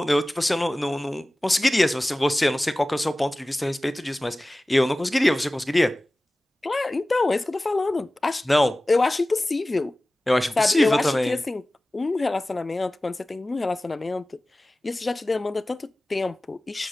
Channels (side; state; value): both; normal; correlation 0.97